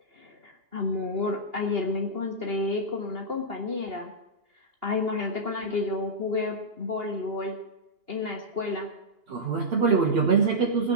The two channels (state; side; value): late; left; 2.8 ms